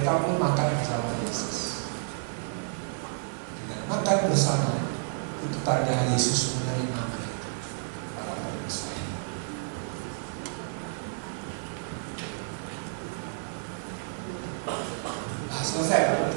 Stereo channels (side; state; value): left; silent; 58 dB below the other